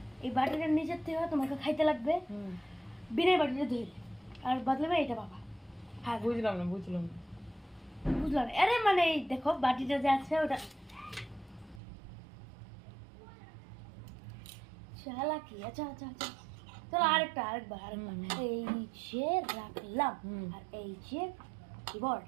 এই বাটিটার নিচের থেকে তোমাকে খাইতে লাগবে বিনা বাটিটা ধরে, আর বদলে এটা বাবা। হ্যাঁ বুঝলাম না বুঝলাম না। আরে মানে এই দেখো বাটিটা যে আছে ওটা চালাকি। আচ্ছা আচ্ছা আচ্ছা চলো আরেকবার এই যে রাখলাম আর এই যে কিবোর্ড।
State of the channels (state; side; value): drops out; left; at 11.8 s